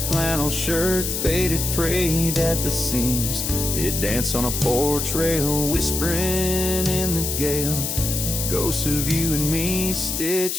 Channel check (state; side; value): noise; left; hiss, 2 dB below the sound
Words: shirt faded, frayed at the seams. It danced on a porch rail, whispering in the gale, ghosts of you and me